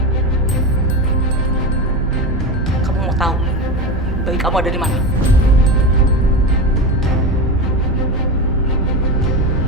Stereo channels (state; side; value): normal; both; correlation 0.21